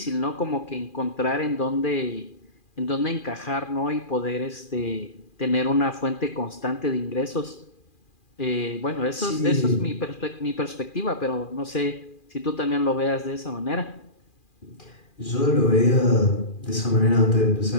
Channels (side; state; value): right; late; 2.4 ms